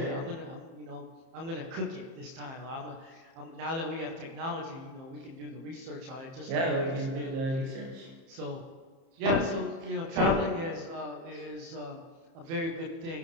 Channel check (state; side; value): late; left; 30 ms